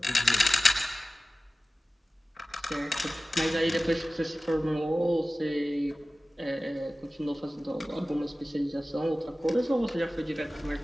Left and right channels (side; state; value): both; normal; correlation 0.96